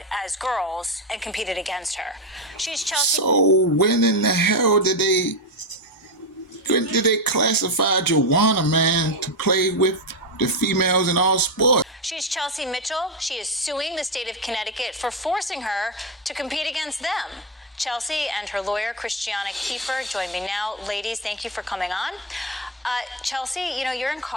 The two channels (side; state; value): both; normal; correlation 0.08